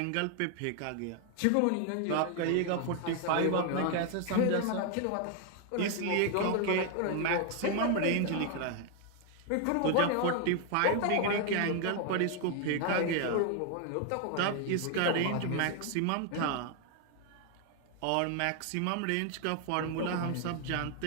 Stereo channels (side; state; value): both; different; correlation 0.00